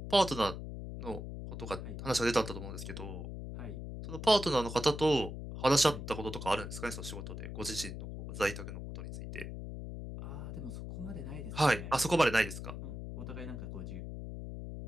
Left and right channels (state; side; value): noise; left; hum, 8 dB below the sound